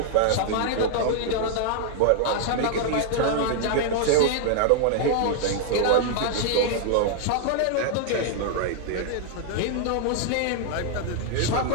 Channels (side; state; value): both; different; correlation 0.00